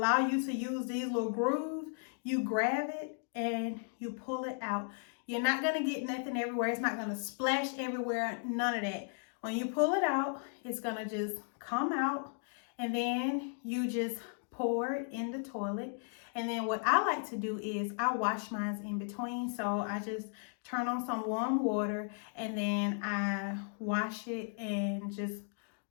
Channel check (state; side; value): silent; right; 54 dB below the other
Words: you to use these little grooves. You grab it and you pull it out. You're not gonna get nothing everywhere. It's not gonna splash everywhere, none of that. When you pull it out, it's gonna just come out, and then you just pour it in the toilet. And then what I like to do is I wash mine in between. So I just turn on some warm water and then I wash it, and just